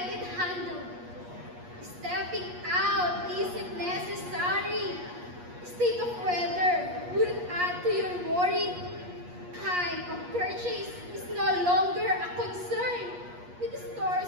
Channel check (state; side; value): late; left; 8.4 ms